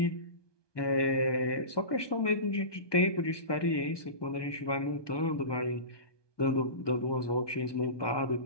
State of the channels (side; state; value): right; late; 1.2 ms